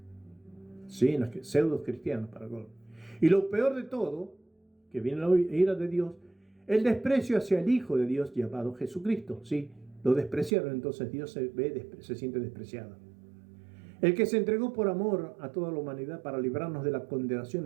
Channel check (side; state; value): left; drops out; at 10.5 s